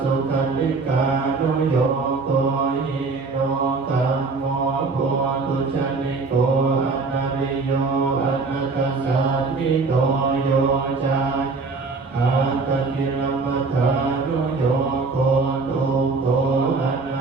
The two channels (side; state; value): left; quieter; 4.1 dB